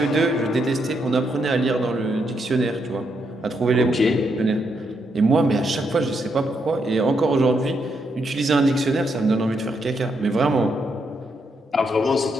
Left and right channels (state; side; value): normal; both; correlation 0.79